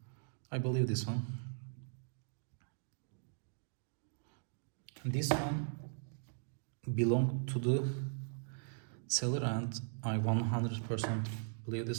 I believe this one. And this one belonged to the seller, and I 100% believe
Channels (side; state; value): left; silent; digital silence